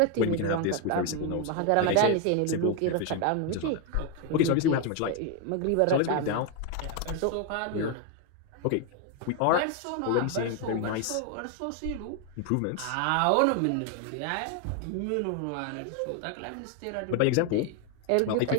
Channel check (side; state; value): both; different; correlation 0.01